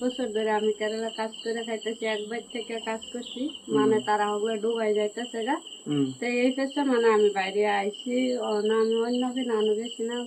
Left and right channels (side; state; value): both; identical; correlation 1.00